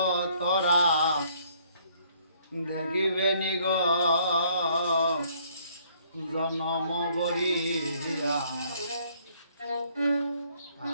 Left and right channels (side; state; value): both; inverted; correlation -0.64